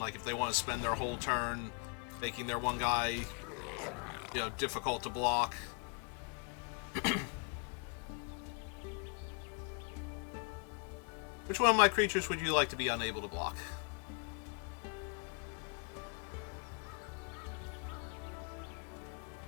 if they want to spend their whole turn making their one guy, you know, difficult to block. Which one of my creatures would you like to be unable to block?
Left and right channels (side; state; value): right; quieter; 36.1 dB